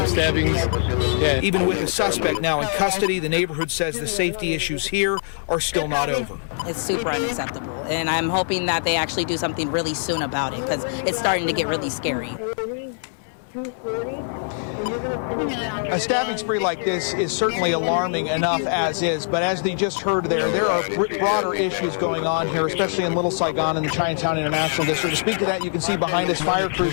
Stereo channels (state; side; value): silent; right; digital silence